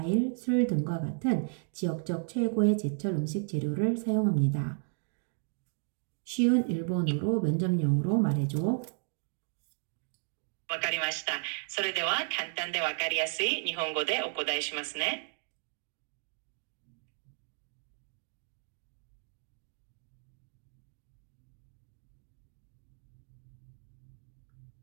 술 등과 같은 지역적 최고의 제철 음식 재료를 사용합니다. 쉬운 일본어로 면접용으로 말해줘. わかりました。それでは簡単でわかりやすい日本語でお答えしますね。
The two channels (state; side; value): silent; left; 55 dB below the other